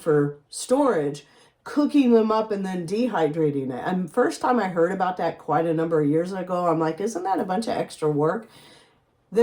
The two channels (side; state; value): both; identical; correlation 1.00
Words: storage, cooking them up and then dehydrating it. And first time I heard about that quite a number of years ago, I'm like, isn't that a bunch of extra work?